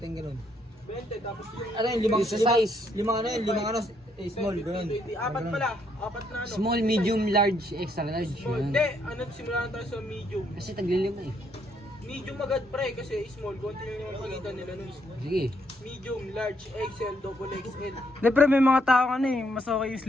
20, tapos yung... Ano yun, limang ano, small, ganun. Apat pala, apat na ano. Small, medium, large, extra large. Small. Yun. Hindi, ano, simulan tayo sa medium. Kasi taglilima eh. Medium agad pre, kasi small, konti lang yung pagitan nila nun. Sige. Medium, large, XL, double XL. Hindi pre, may mga tao ano eh, mas okay yung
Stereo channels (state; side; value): normal; both; correlation 0.72